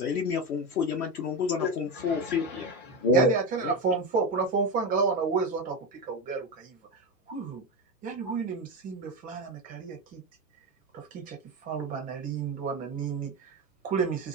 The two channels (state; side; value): normal; both; correlation 0.17